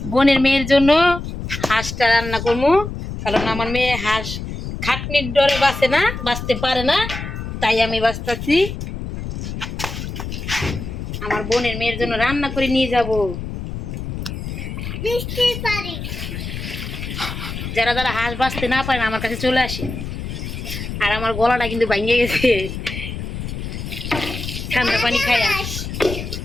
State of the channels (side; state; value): left; noise; rumble, 7 dB below the sound